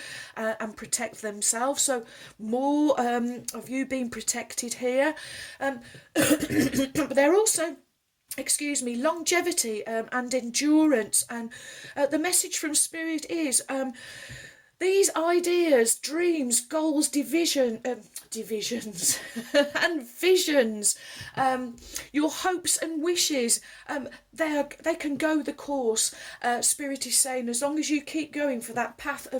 and protect themselves. So more of you being protected here. But they're also, longevity and endurance. And the message from Spirit is these ideas, dreams, goals, divisions and visions, your hopes and wishes, they can go the course. Spirit is saying, as long as you keep going for that path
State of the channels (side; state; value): both; identical; correlation 1.00